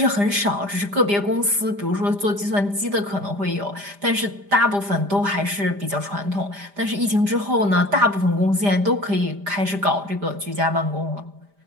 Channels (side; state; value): left; late; 5.0 ms